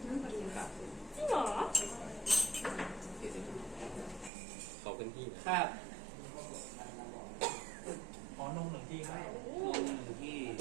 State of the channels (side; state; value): left; drops out; at 4.3 s